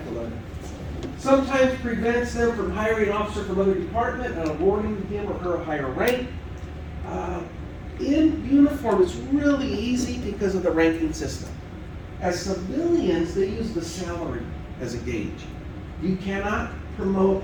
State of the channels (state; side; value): identical; both; correlation 1.00